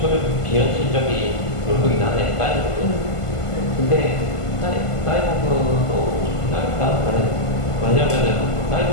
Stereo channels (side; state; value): right; late; 1.5 ms